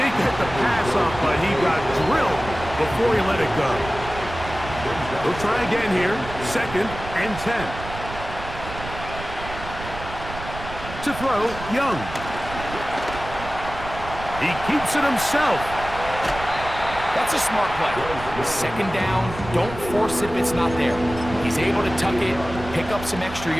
get the pass off, but he got drilled before he let it go. We'll try again here. 2nd and 10. To throw, Young. He keeps it himself. That's a smart play. 2nd down, don't force it if it's not there. He's able to tuck it, pick up some extra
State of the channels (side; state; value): right; noise; rumble, 11 dB below the sound